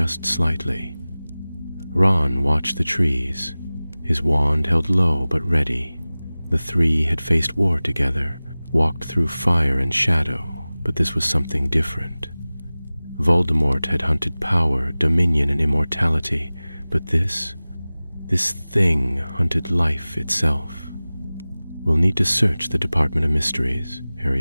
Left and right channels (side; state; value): both; inverted; correlation -0.98